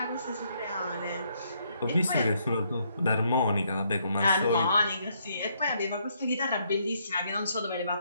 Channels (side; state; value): both; inverted; correlation -0.72